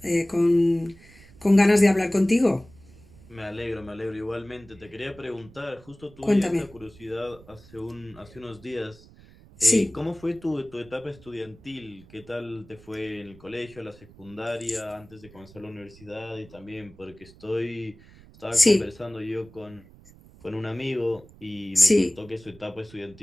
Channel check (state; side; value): noise; right; rumble, 23 dB below the sound